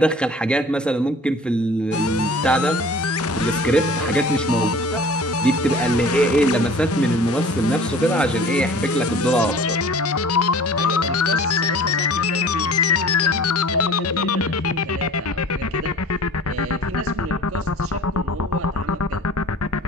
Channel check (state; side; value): normal; both; correlation 0.45